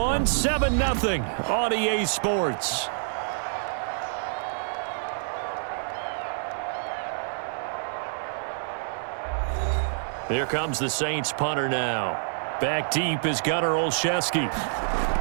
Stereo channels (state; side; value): silent; left; digital silence